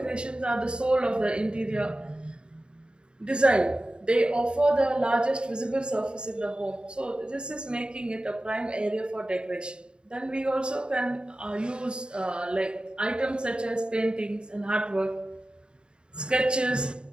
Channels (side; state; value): left; late; 0.051 ms